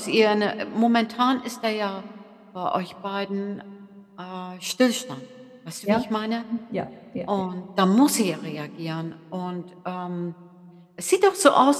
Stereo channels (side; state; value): both; identical; correlation 1.00